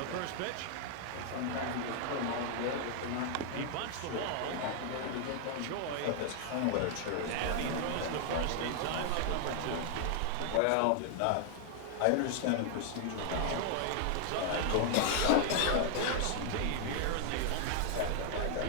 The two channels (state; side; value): different; both; correlation 0.00